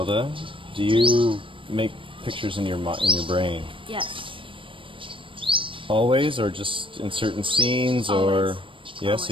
do you make pictures in your brain Yes. always, or just in certain scenes, Always. or yeah?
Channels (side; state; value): left; late; 0.25 ms